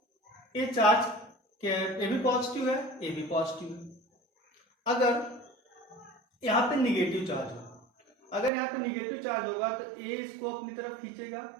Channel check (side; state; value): left; drops out; at 8.5 s